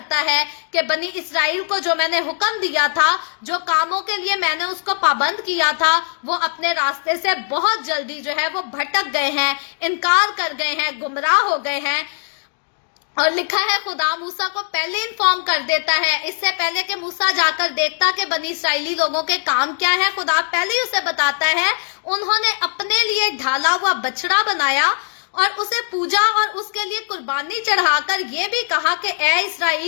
है कि बनी इसराइल को जो मैंने हुक्म दिया था, जो कामों के लिए मैंने उसको पाबंद किया था, वो अपने रास्ते से बहुत जल्दी जो है वो भटक गए हैं, इनकार कर गए हैं, गुमराह हो गए हैं। और लिखा है खुदा मूसा को पहले इन्फॉर्म कर देता है, इससे पहले कि मूसा जाकर देखता कि बनी इसराइली लोगों के काम क्या है, खुदा पहले ही उसे बताता है। उन्होंने अपने लिए ढाला हुआ बछड़ा बनाया और उसे पूजा और उसके लिए कुर्बानी चढ़ाकर ये भी कहा कि ए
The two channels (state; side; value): silent; right; digital silence